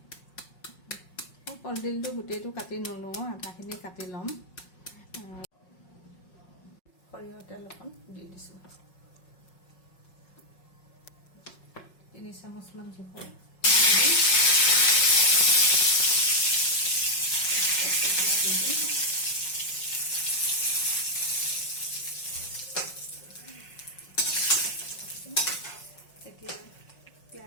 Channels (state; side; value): late; right; 5.5 ms